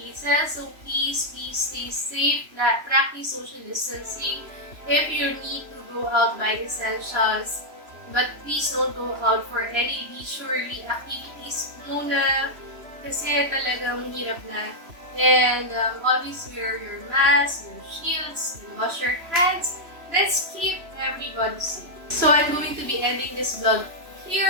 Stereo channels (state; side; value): late; left; 3.0 ms